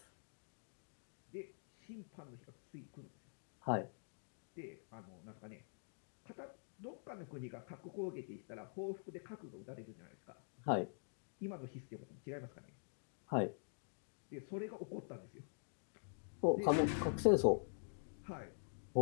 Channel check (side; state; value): right; silent; digital silence